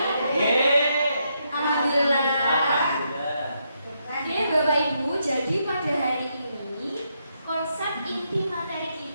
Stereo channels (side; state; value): both; inverted; correlation -0.79